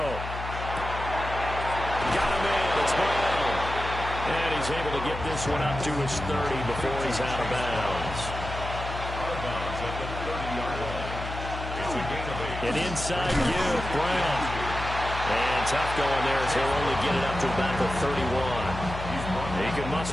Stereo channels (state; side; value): noise; left; hum, 7 dB below the sound